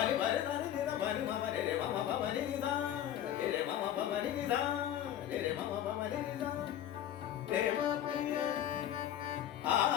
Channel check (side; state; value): right; quieter; 11.2 dB